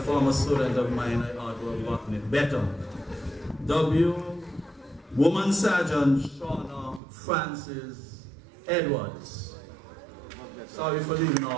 student of mine, I ought to have gotten it better. Woman Sergeant Shauna Francis Edwards. Sorry for leaving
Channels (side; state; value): left; drops out; at 7.0 s